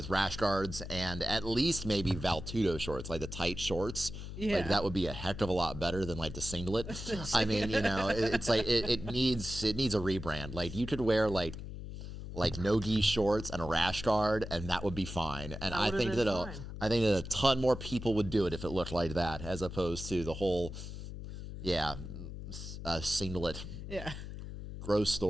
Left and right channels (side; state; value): left; noise; hum, 9 dB below the sound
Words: rash guards and at least maybe Valtudo shorts, like the tight shorts, like that would be a heck of a lot better than like the singlet. I mean, you know, it's like it needs a rebrand. Like you could wear like no-gi shorts and a rash guard, and that would be fine. And I think that a ton more people would do it if it looked like that, as opposed to the whole, singlet. Yeah. Gross